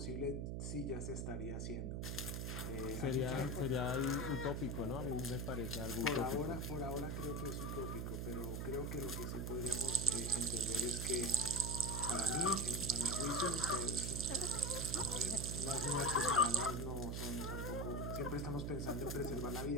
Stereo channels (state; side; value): noise; right; hum, 2 dB below the sound